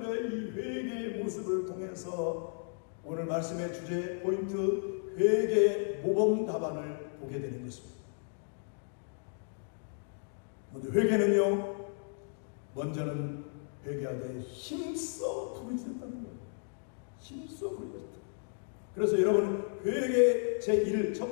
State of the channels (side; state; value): right; silent; digital silence